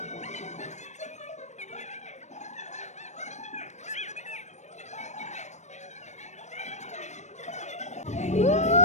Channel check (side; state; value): right; late; 0.34 ms